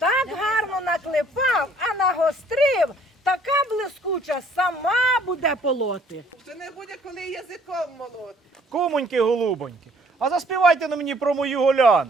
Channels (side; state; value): both; normal; correlation 0.60